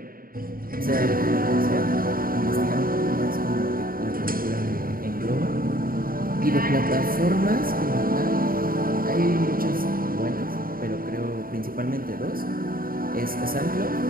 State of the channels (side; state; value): left; late; 0.42 ms